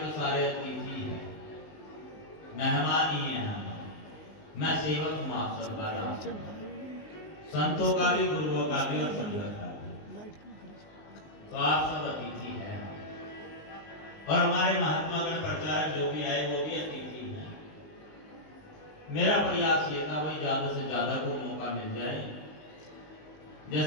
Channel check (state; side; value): late; right; 19 ms